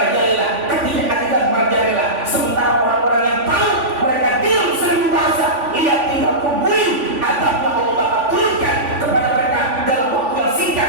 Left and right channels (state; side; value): late; left; 3.5 ms